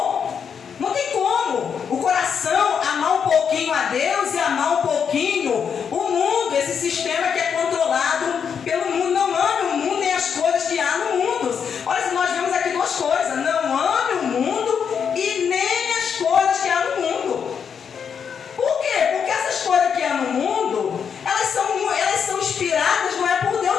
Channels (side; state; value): right; quieter; 7.1 dB